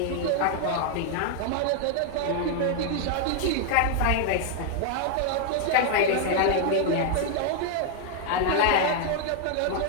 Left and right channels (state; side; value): different; both; correlation 0.00